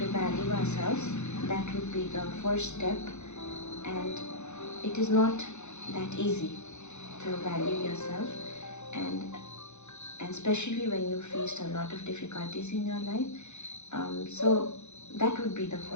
value ourselves. That would be the first step, and it is not that easy to value yourself, and especially when you faced a lot of difficulties in your life. So that would be the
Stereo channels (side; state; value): right; late; 0.83 ms